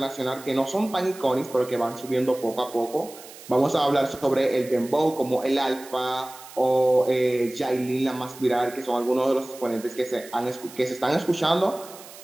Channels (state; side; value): noise; right; hiss, 18 dB below the sound